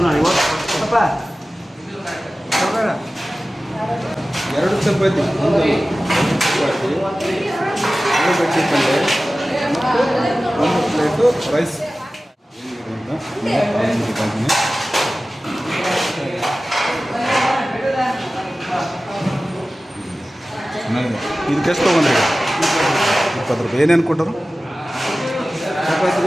ಎರಡು ಚಪಾತಿ, ಒಂದು ಚಪಾತಿ, ಆಲೂಗಡ್ಡೆ ಪಲ್ಯ ಮತ್ತು ಒಂದು ಪ್ಲೇಟು ರೈಸ್. ಇದಕ್ಕೆ ಎಷ್ಟು ತೊಗೊಂಡ್ರಿ? 20 ರೂಪಾಯಿ. ಏನೇನು ಕೊಟ್ಟರು?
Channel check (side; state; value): both; normal; correlation 0.96